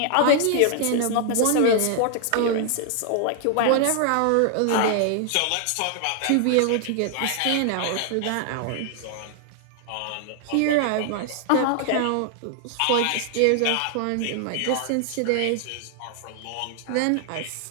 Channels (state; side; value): different; both; correlation 0.00